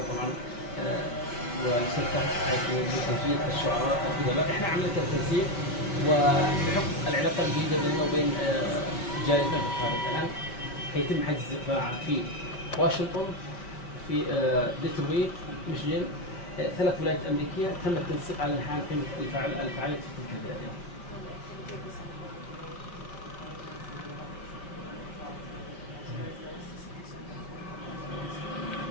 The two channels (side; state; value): right; late; 5.0 ms